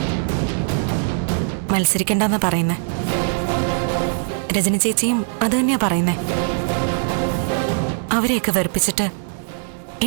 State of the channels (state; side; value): silent; left; digital silence